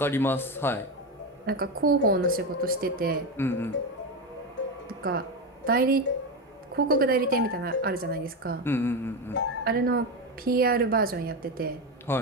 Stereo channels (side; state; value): both; normal; correlation 0.14